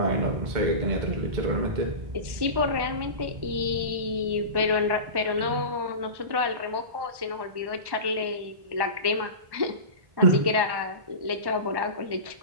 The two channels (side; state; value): left; late; 1.1 ms